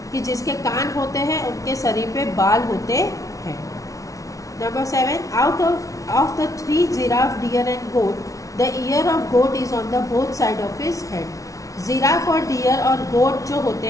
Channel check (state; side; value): late; right; 0.17 ms